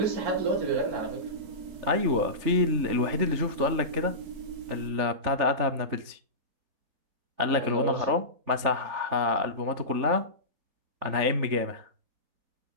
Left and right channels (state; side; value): late; left; 3.4 ms